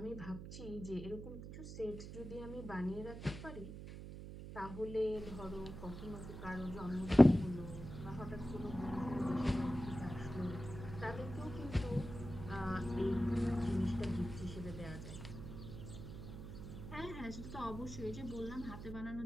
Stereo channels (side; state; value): right; noise; hum, 10 dB below the sound